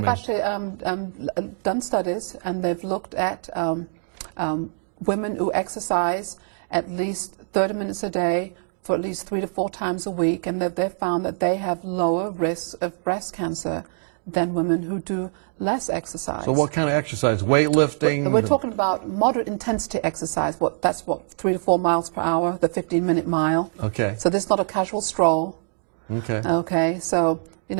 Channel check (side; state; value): left; silent; digital silence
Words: They've actually done studies, and they've looked at women who exercise at least 30 minutes a day for at least 3 to 4 times a week, and they've found that they have lower risks of breast cancer than women who do less exercise. So what kind of exercise? Weightlifting? We're talking about moderate intensity exercise. That's 3 to 4 miles per hour, the 15-minute mile. Okay. So this is not a casual stroll. Okay. Okay. So the